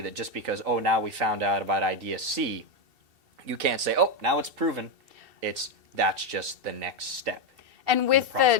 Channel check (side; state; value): left; late; 2.7 ms